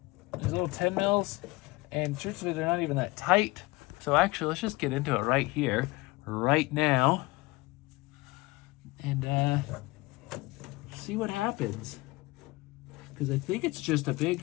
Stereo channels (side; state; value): right; quieter; 22.6 dB